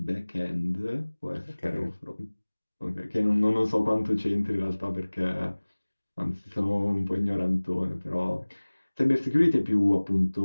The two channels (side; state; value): both; inverted; correlation -1.00